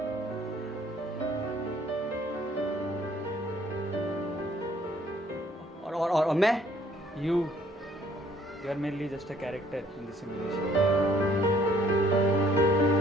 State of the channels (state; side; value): normal; both; correlation 0.61